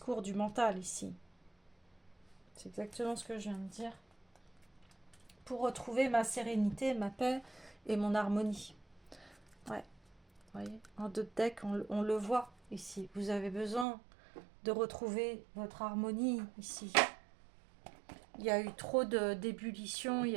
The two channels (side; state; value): left; drops out; at 13.9 s